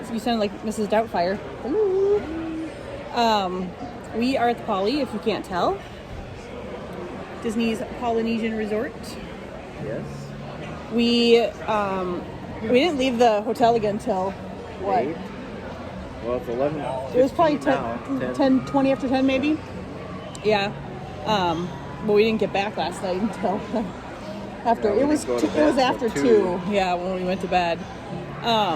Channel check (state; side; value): identical; both; correlation 1.00